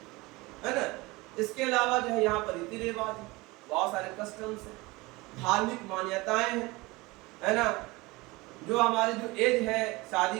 है ना। इसके अलावा जो है यहाँ पर रीति रिवाज है, बहुत सारे कस्टम्स है, धार्मिक मान्यताएं हैं, है ना। जो हमारी जो एज है, शादी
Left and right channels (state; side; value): quieter; left; 22.6 dB